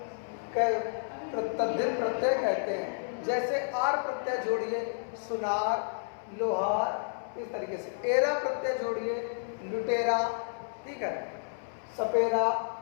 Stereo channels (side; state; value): right; silent; 57 dB below the other